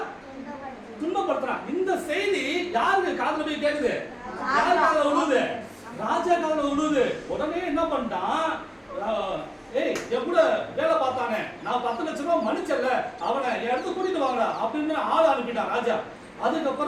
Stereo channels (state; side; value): identical; both; correlation 1.00